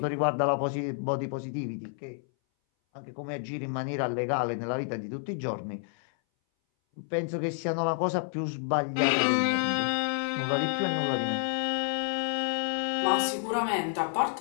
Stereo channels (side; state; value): right; silent; 58 dB below the other